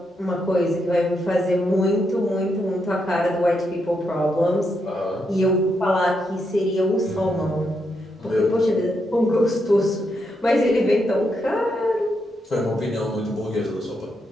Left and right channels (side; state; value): both; normal; correlation 0.81